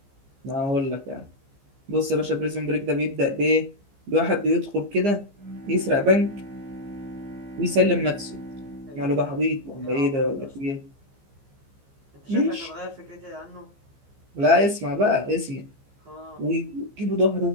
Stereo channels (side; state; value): left; late; 15 ms